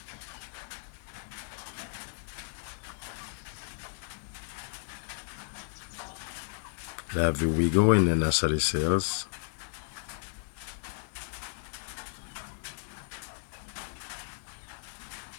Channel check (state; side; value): silent; right; 55 dB below the other